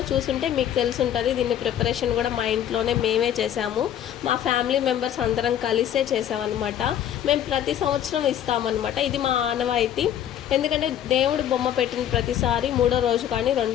చూసుంటే మీకు తెలుసుంటుంది. దీన్ని ప్రిపరేషన్ కూడా మా ఇంట్లోనే మేమే చేసాము. మా ఫ్యామిలీ మెంబర్స్ అందరం కలిసే చేసామన్నమాట. మేము ప్రతి సంవత్సరం ఇస్తామన్నమాట. ఇది మా ఆనవాయితీ. ఎందుకంటే దేవుడు బొమ్మ పెట్టిన ప్రతిసారి 3వ రోజు కానీ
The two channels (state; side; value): quieter; right; 10.6 dB